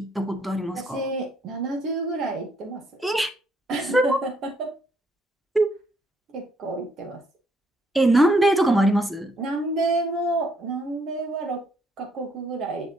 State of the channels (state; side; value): normal; both; correlation 0.70